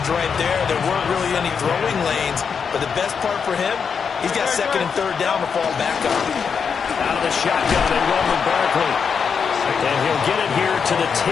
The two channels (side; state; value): right; quieter; 6.3 dB